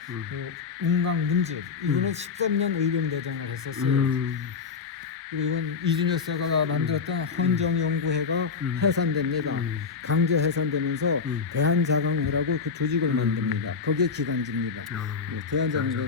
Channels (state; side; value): quieter; right; 5.4 dB